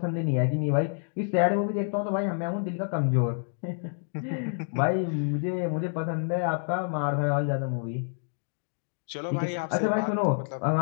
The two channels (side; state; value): right; silent; digital silence